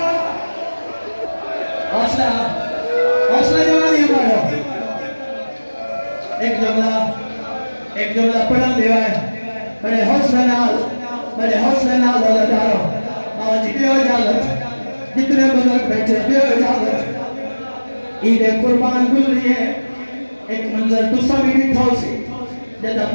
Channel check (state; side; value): inverted; both; correlation -1.00